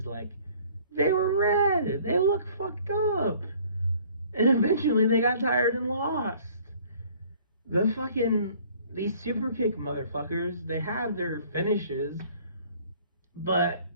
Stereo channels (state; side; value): inverted; both; correlation -0.55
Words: like, they were red, they looked fucked up, and eventually they got tired and lost. these super kick motherfuckers, they have their finishes, but